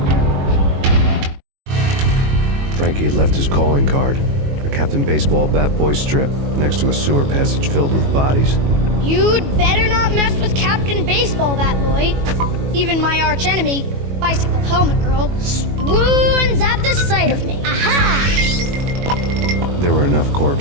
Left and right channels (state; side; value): late; left; 21 ms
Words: Frankie had left his calling card, a Captain Baseball bat boy strip, next to a sewer passage filled with bodies. You'd better not mess with Captain Baseball Bat Boy. Even my archenemy, Bicycle Helmet Girl, swoons at the sight of me. Aha! There were enough